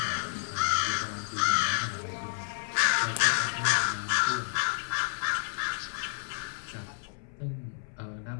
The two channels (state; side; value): silent; right; 58 dB below the other